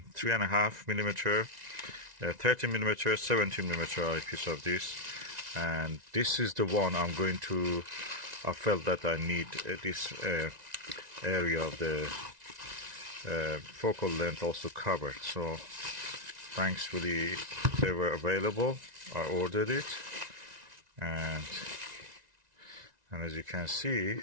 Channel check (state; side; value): late; left; 1.9 ms